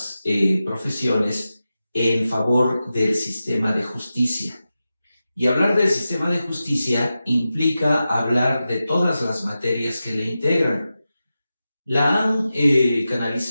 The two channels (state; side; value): inverted; both; correlation -0.92